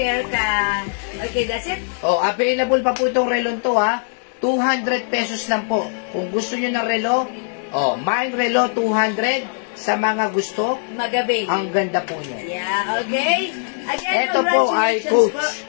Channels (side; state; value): right; silent; 60 dB below the other